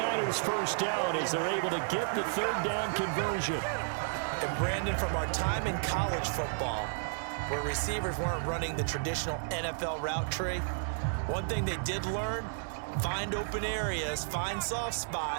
first down as they're able to get the 3rd down conversion. And Brandon, from our time in college football, where receivers weren't running the traditional NFL route tree, one thing they did learn, find open areas, find soft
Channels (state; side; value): silent; left; 56 dB below the other